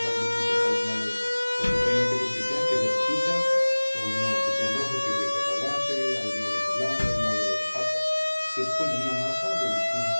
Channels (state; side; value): inverted; both; correlation -1.00